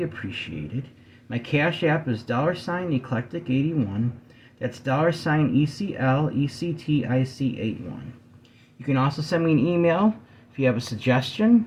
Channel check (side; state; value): both; identical; correlation 1.00